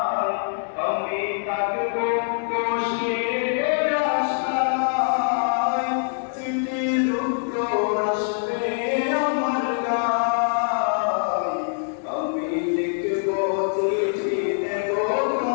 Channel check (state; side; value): silent; right; 63 dB below the other